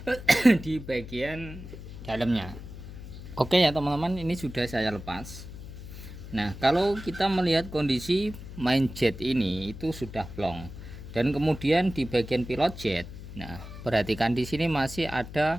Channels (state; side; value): noise; left; hum, 12 dB below the sound